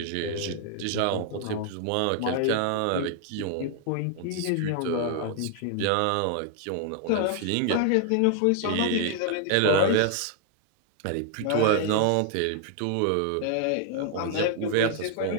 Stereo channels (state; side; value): different; both; correlation 0.00